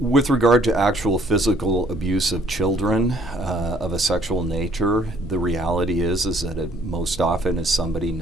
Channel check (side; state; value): both; normal; correlation 0.61